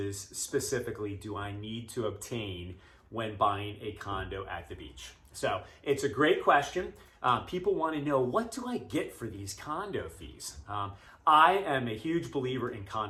specifically do I need to obtain when buying a condo at the beach? So it's a great question. People want to know, what do I get for these condo fees? I am a huge believer in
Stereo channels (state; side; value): identical; both; correlation 1.00